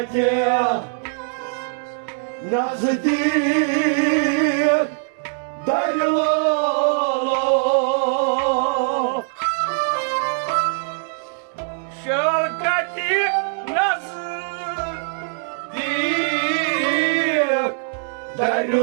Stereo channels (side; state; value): left; silent; digital silence